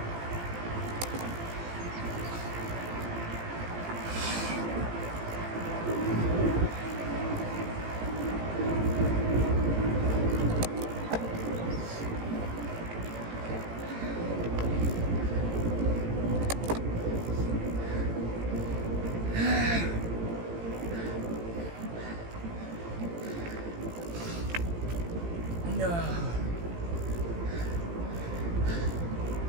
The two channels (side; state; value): left; late; 18 ms